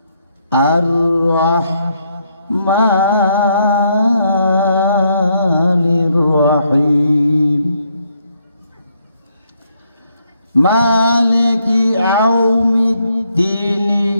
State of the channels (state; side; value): inverted; both; correlation -0.74